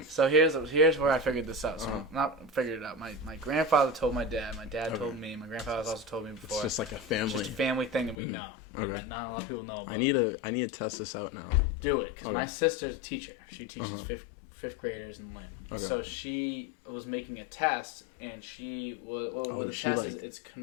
So here's where I figured this out. So not figured it out. My grandfather told my dad. My dad told me. My grandfather's also told me before. It's just like a family. It's just a family thing that we know. Okay. Not a lot of people know about. I need to test this out now. Do it, because my sister's a teacher. She teaches fifth graders in Lynn. Okay. So she was making a test, and what the test is, it's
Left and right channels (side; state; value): right; drops out; at 8.2 s